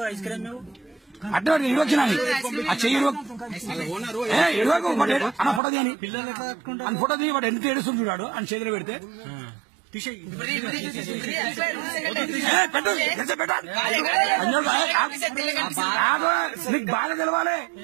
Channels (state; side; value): drops out; left; at 5.6 s